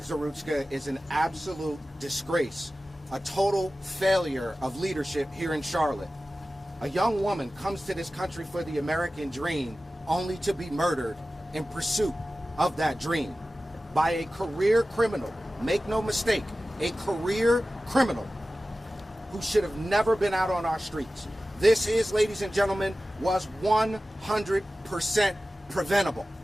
Zarutska is an absolute disgrace, a total failure of leadership here in Charlotte. A young woman comes to this country for the American dream only to be murdered in pursuit of that dream by a career criminal. Make no mistake, a career criminal who should have never been out on our streets. This is, ladies and gentlemen, was 100% preventable.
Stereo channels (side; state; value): both; normal; correlation 0.95